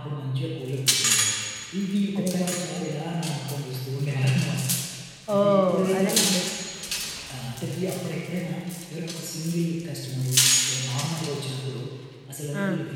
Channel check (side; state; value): both; identical; correlation 1.00